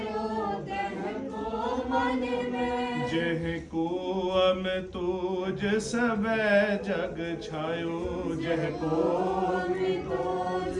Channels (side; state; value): both; identical; correlation 1.00